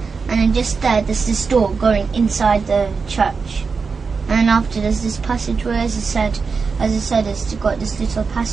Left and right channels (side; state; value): left; quieter; 5.0 dB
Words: and then just there's this door going inside the church. And then after there's this passageway, as I said, it's got this little